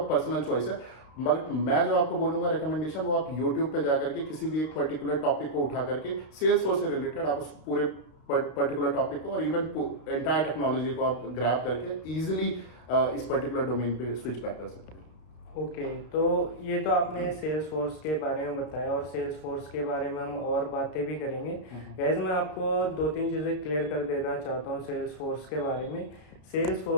पर्सनल चॉइस है। मगर मैं जो आपको बोलूंगा रिकमेंडेशन, वो आप यूट्यूब पे जा करके किसी भी एक पर्टिकुलर टॉपिक को उठा करके सेल्सफोर्स से रिलेटेड आप उस पूरे पर्टिकुलर टॉपिक को और इवन एंटायर टेक्नोलॉजी को आप ग्रैब करके इजीली इस पर्टिकुलर डोमेन पे स्विच बैक कर सकते हैं। ओके, तो ये तो आपने सेल्स फोर्स के बारे में बताया और सेल्स फोर्स के बारे में हम और बातें भी करेंगे। गैस मैं आपको 2-3 चीज़ें क्लियर कर देना चाहता हूँ सेल्स फोर्स के बारे में। सेल्स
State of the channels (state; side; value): late; right; 33 ms